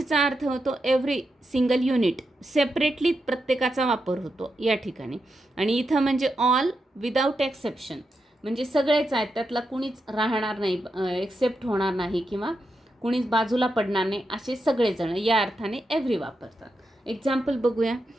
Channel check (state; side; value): normal; both; correlation 0.86